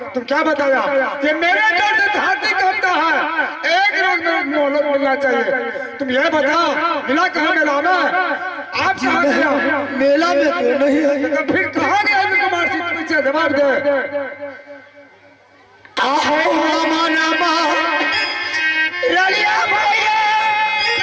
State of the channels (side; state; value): both; identical; correlation 1.00